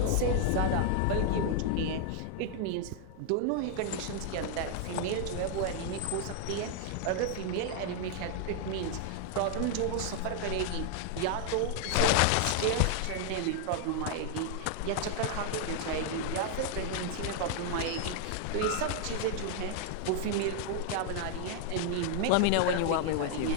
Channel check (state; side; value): different; both; correlation 0.00